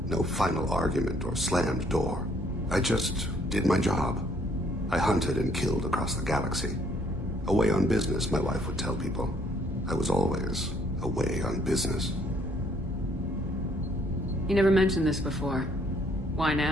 no final argument or slammed door. I just did my job. I hunted and killed across the galaxy. Away on business, my wife would tell people. I was always away on business. You never mentioned this before. Why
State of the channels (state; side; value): normal; both; correlation 0.65